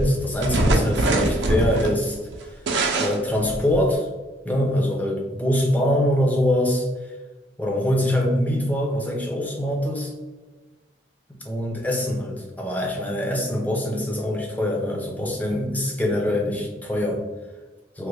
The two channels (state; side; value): normal; both; correlation 0.67